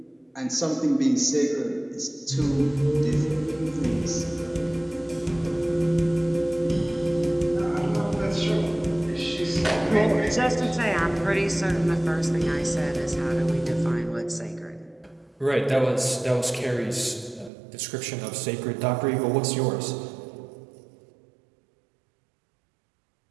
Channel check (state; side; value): drops out; left; at 17.5 s